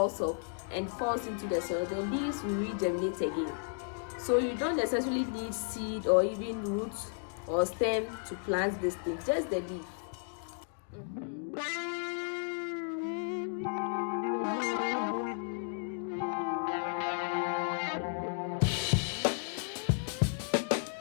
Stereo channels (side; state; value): right; silent; 55 dB below the other